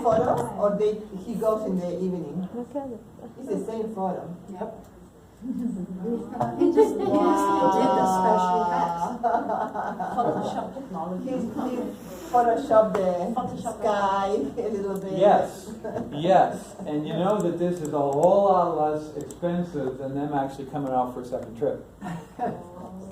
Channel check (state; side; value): identical; both; correlation 1.00